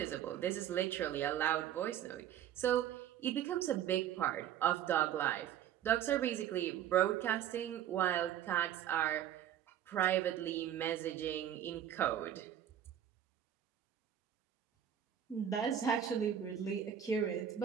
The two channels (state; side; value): quieter; left; 10.3 dB